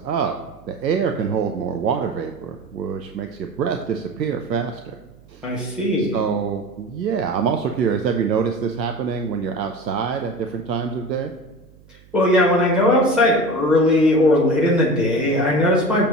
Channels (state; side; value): noise; right; hum, 26 dB below the sound